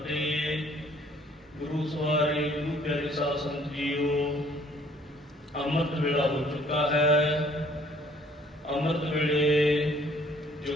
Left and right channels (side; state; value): both; normal; correlation 0.59